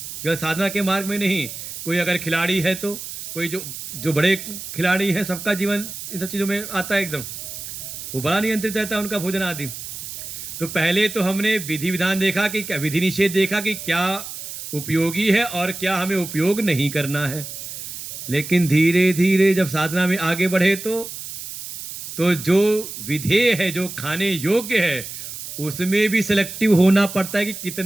केवल साधना के मार्ग में नहीं। कोई अगर खिलाड़ी है तो कोई जो बड़े खिलाड़ी हैं, सबका जीवन इन सब चीज़ों में आता है, एकदम वो बड़ा नियंत्रित रहता है उनका भोजन आदि। तो पहले तो हमने विधि विधान देखा कि क्या विधि निषेध देखा कि क्या उपयोगी है और क्या हमें उपयोग नहीं करना है। लेकिन धीरे धीरे जब साधना में आगे बढ़े तो जो विधेय है, जो खाने योग्य है, उसमें भी सिलेक्टिव होना पड़ता है कि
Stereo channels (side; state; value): right; noise; hiss, 10 dB below the sound